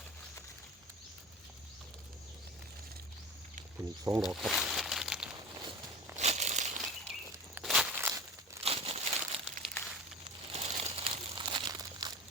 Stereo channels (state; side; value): normal; both; correlation 0.33